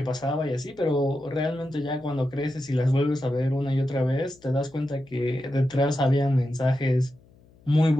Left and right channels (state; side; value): noise; left; hum, 28 dB below the sound